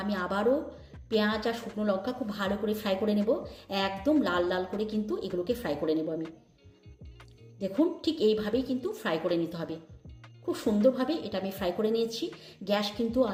আমি আবারও পেঁয়াজ আর শুকনো লঙ্কা খুব ভালো করে ফ্রাই করে নেব। একদম লাল লাল করে কিন্তু এগুলোকে ফ্রাই করে নেব আমি। দেখুন, ঠিক এইভাবেই কিন্তু ফ্রাই করে নিতে হবে। খুব সুন্দরভাবে এটা আমি ফ্রাই করে নিয়েছি। গ্যাস কিন্তু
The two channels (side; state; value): both; identical; correlation 1.00